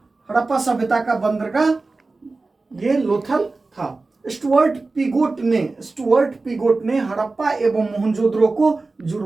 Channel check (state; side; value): quieter; left; 3.6 dB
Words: सभ्यता का बंदरगाह ये लोथल था। स्टुअर्ट पीगोट ने हड़प्पा एवं मोहनजोदड़ो को